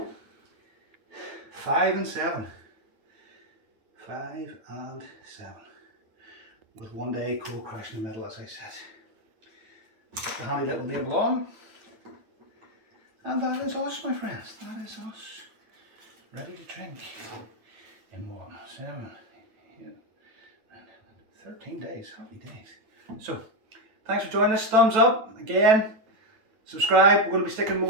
5 and 7. 5 and 7. With 1 day cold crash in the middle, as I said. Put the handy little label on. And that is us, my friends. That is us. Ready to drink. In 1, 7, 8, 13 days. Happy days. So, thanks for joining us. Thumbs up. Again, subscribe. We're going to be sticking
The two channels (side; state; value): left; late; 9.0 ms